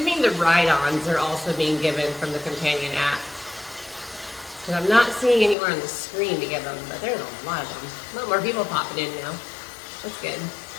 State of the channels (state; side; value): drops out; right; at 5.6 s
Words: the ride-ons are also being given from the companion app. Because I'm not seeing anywhere on the screen to give them, but there's a lot of them. A lot more people popping in now. That's good.